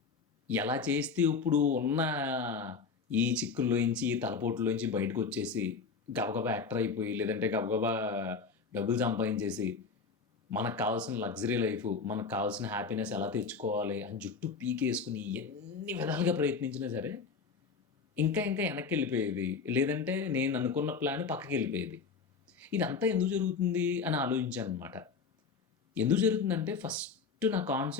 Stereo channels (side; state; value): right; quieter; 5.1 dB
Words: ఎలా చేస్తే ఇప్పుడు ఉన్న ఈ చిక్కుల్లోంచి ఈ తలపోట్లోంచి బయటకు వచ్చేసి గబగబా యాక్టర్ అయిపోయి, లేదంటే గబగబా డబ్బులు సంపాదించేసి మనకు కావాల్సిన లగ్జరీ లైఫ్, మనకు కావాల్సిన హ్యాపీనెస్ ఎలా తెచ్చుకోవాలి అని జుట్టు పీకేసుకుని ఎన్ని విధాలుగా ప్రయత్నించినా సరే ఇంకా ఇంకా వెనక్కి వెళ్ళిపోయేది, లేదంటే నేను అనుకున్న ప్లాన్ పక్కకి వెళ్ళిపోయేది. ఇదంతా ఎందుకు జరుగుతుంది అని ఆలోచించాను అనమాట. ఎందుకు జరుగుతుందంటే ఫస్ట్ నా